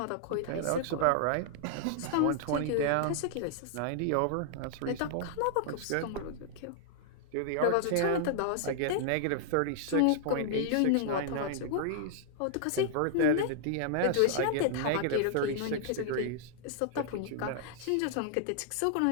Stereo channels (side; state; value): both; different; correlation -0.01